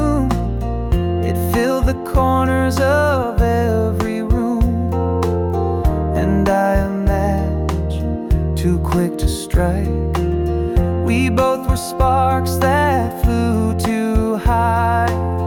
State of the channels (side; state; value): both; identical; correlation 1.00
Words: It filled the corners of every room. And I a match too quick to strike. We both were sparks that flew too high.